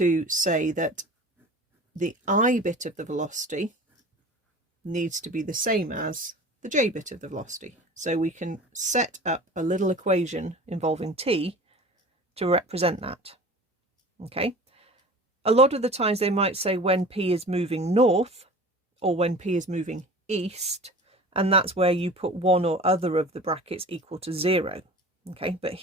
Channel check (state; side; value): normal; both; correlation 0.39